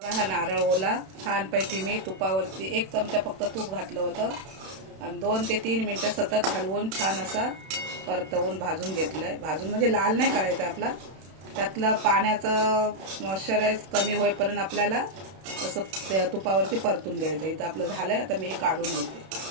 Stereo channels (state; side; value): late; left; 31 ms